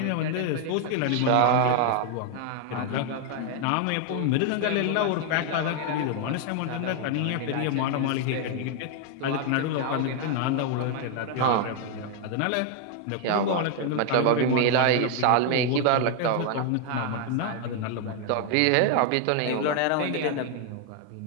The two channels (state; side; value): different; both; correlation 0.00